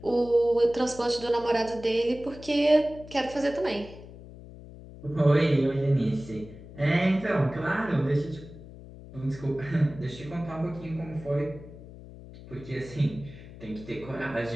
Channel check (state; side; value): noise; left; hum, 16 dB below the sound